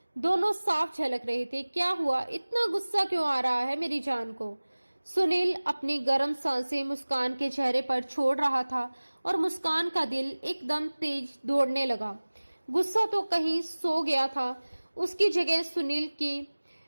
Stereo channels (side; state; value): both; inverted; correlation -1.00